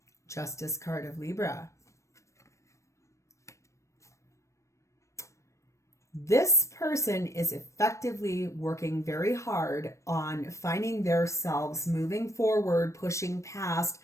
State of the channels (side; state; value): right; late; 0.15 ms